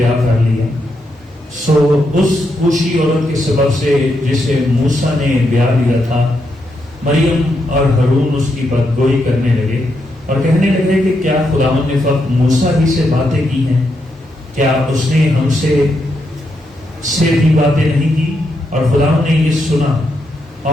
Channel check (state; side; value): normal; both; correlation 0.81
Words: کر لیا. سو اس کوشی عورت کے سبب سے جسے موسیٰ نے بیاہ لیا تھا, مریم اور ہارون اس کی بدگوئی کرنے لگے اور کہنے لگے کہ کیا خداوند نے فقط موسیٰ ہی سے باتیں کی ہیں, کیا اس نے ہم سے بھی باتیں نہیں کی؟ اور خداوند نے یہ سنا,